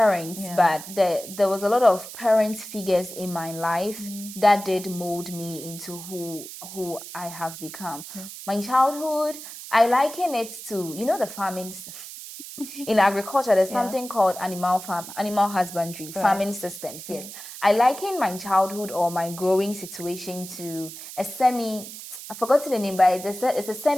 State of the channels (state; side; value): noise; right; hiss, 12 dB below the sound